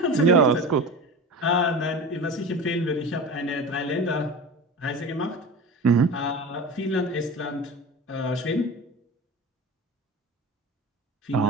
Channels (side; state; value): both; normal; correlation 0.31